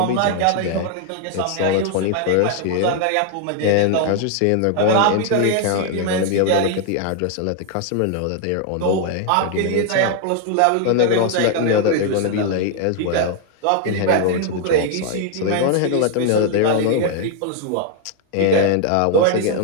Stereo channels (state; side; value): different; both; correlation 0.00